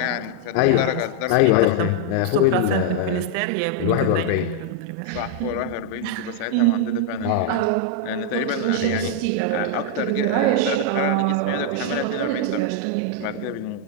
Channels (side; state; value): both; different; correlation 0.00